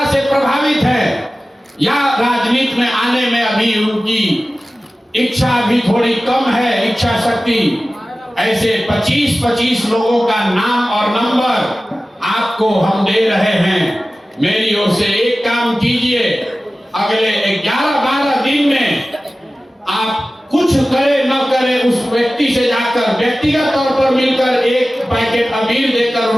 से प्रभावित है या राजनीति में आने में अभी उनकी इच्छा भी थोड़ी कम है, इच्छा शक्ति, ऐसे 25 लोगों का नाम और नंबर आपको हम दे रहे हैं। मेरी ओर से एक काम कीजिए, अगले 11-12 दिन में आप कुछ करे न करे उस व्यक्ति से जाकर व्यक्तिगत तौर पर मिलकर एक पैकेट अबीर देकर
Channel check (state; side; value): normal; both; correlation 0.96